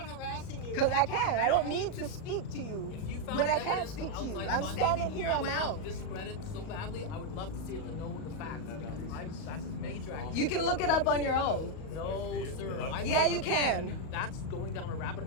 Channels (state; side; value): late; right; 37 ms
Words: harassing you. Because I can. I don't need to speak to you If you found when I can't evidence speak of to you. outside I'm funding standing here that on would my help own. Discredit so badly. I would love to see it to know the facts because it's That's a major accusation. You can look it up on your own. No, sir. Yeah, you can. That's going down a rabbit